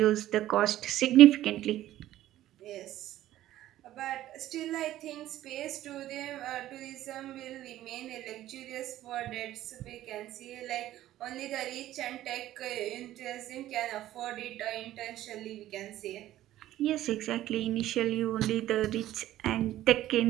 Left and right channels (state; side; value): quieter; left; 13.9 dB